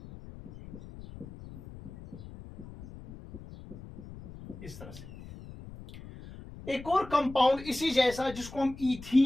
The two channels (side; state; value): left; noise; rumble, 15 dB below the sound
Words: इस तरह से। एक और कंपाउंड इसी जैसा जिसको हम